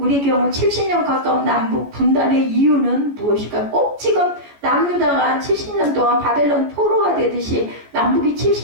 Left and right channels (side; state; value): left; late; 14 ms